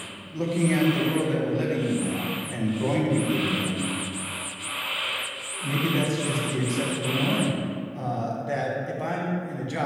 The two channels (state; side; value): identical; both; correlation 1.00